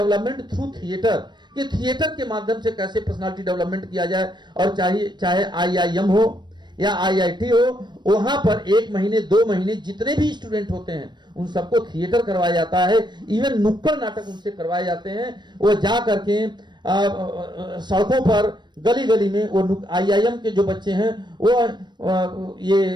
थ्रू थिएटर, कि थिएटर के माध्यम से कैसे पर्सनालिटी डेवलपमेंट किया जाए। और चाहे आईआईएम हो या आईआईटी हो, वहां पर 1 महीने 2 महीने जितने भी स्टूडेंट होते हैं उन सबको थिएटर करवाया जाता है। इवन नुक्कड़ नाटक उनसे करवाए जाते हैं। वो जा करके सड़कों पर गली गली में वो आईआईएम के जो बच्चे हैं वो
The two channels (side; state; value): left; late; 0.22 ms